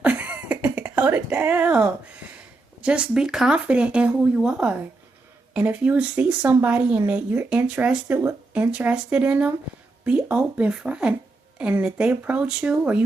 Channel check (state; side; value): quieter; left; 3.3 dB